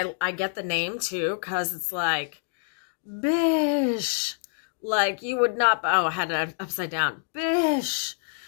get the name too, because it's like, bish. Like you would not, oh, I had it upside down. Bish.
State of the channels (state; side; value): silent; right; digital silence